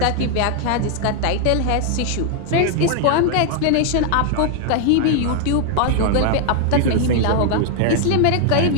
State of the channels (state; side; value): different; both; correlation 0.00